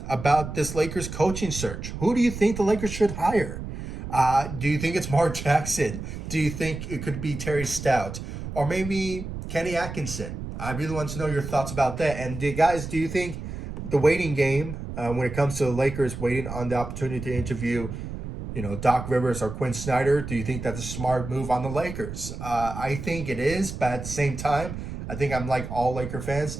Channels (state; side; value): noise; right; rumble, 8 dB below the sound